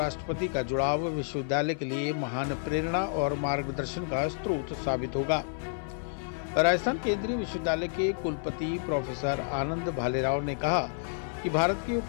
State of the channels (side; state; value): right; silent; 58 dB below the other